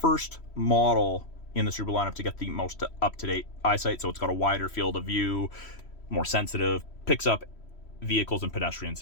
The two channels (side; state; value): right; late; 3.1 ms